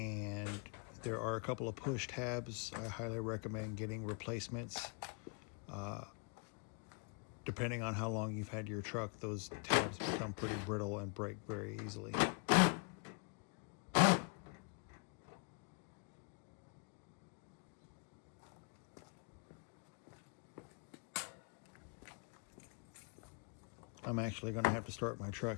there are a couple of push tabs. I highly recommend getting replacements. Depending on how long you've had your truck, those tabs become pretty brittle and break very easily. I'm actually going to have to start my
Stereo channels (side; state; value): right; quieter; 36.9 dB